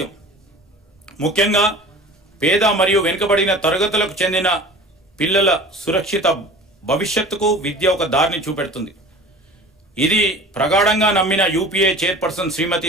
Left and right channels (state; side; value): normal; both; correlation 0.40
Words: ముఖ్యంగా పేద మరియు వెనుకబడిన తరగతులకు చెందిన పిల్లల సురక్షిత భవిష్యత్తుకు విద్య ఒక దారిని చూపెడుతుంది. ఇది ప్రగాఢంగా నమ్మిన యూపీఏ చైర్పర్సన్